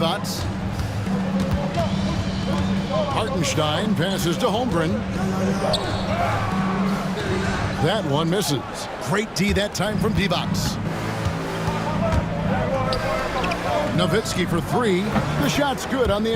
Hartenstein passes to Holmgren. That one misses. Great D that time from Divac. Nowitzki for 3. The shot's good on the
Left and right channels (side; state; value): both; identical; correlation 1.00